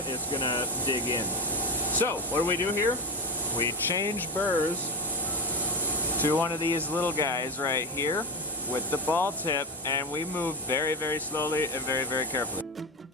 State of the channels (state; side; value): normal; both; correlation 0.18